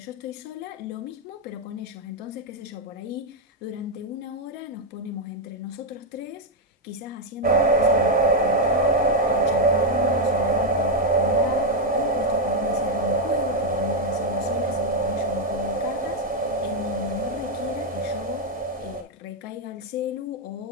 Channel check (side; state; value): both; normal; correlation 0.02